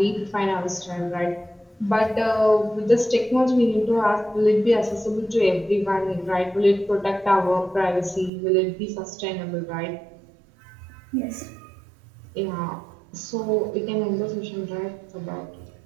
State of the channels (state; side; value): drops out; left; at 8.3 s